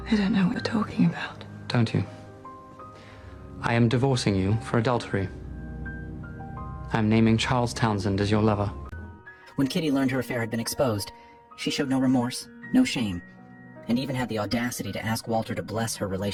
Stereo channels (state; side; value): identical; both; correlation 1.00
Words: I don't know what you're talking about. Don't you? I am divorcing you for adultery. I'm naming Charles Townsend as your lover. When Kitty learned her affair had been exposed, she showed no remorse, no shame, and even had the audacity to ask Walter to bless her